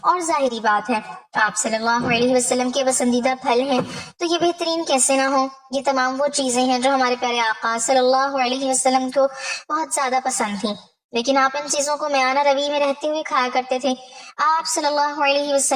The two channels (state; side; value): identical; both; correlation 1.00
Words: اور ظاہری بات ہے آپ صلی اللہ علیہ وسلم کے پسندیدہ پھل ہیں تو یہ بہترین کیسے نہ ہو۔ یہ تمام وہ چیزیں ہیں جو ہمارے پیارے آقا صلی اللہ علیہ وسلم کو بہت زیادہ پسند تھیں، لیکن آپ ان چیزوں کو میانہ روی میں رہتے ہوئے کھایا کرتے تھے۔ آپ صلی اللہ علیہ